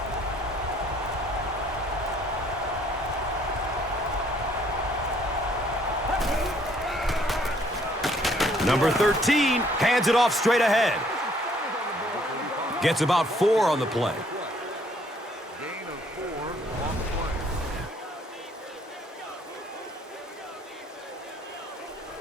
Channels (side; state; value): both; normal; correlation 0.63